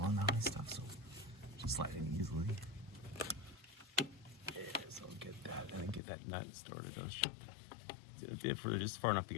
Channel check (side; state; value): right; drops out; at 6.0 s